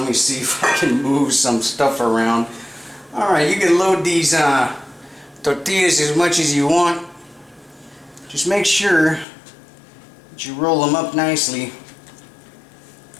me see if I can move some stuff around. Alright, you can load these tortillas as much as you want. Just make sure that you roll them up nicely.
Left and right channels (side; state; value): right; drops out; at 9.2 s